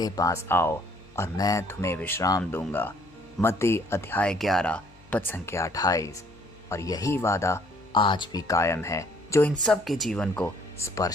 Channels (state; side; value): noise; left; hum, 28 dB below the sound